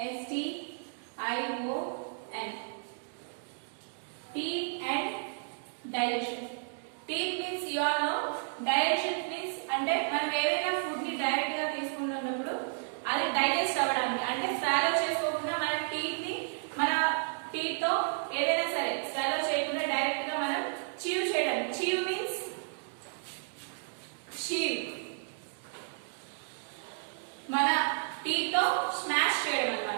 teeth and digestion. Teeth means you all know, digestion means అంటే మనం ఏదైనా ఫుడ్ ని డైరెక్ట్ గా తీసుకుంటున్నప్పుడు అది డైజెస్ట్ అవ్వడానికి, అంటే స్వాలో చేసుకోకుండా మన టీత్ తో ఏదైనా సరే స్వాలో చేయకుండా డైరెక్ట్ గా మనం చీవ్ చేయడానికి. చీవ్ మీన్స్ చీవ్, మన టీత్ తో స్మాష్ చేయడం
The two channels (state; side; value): silent; left; digital silence